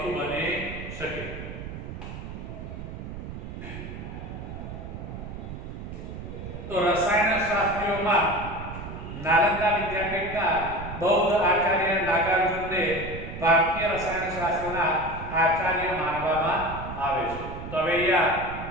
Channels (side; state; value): right; noise; rumble, 9 dB below the sound